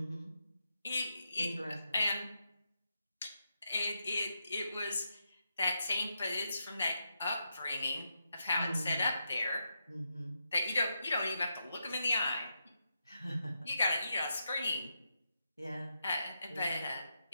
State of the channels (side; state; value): both; inverted; correlation -0.84